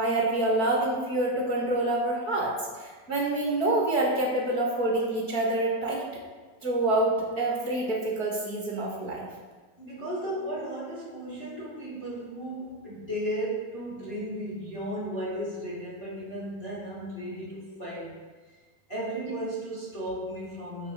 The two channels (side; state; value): right; late; 4.6 ms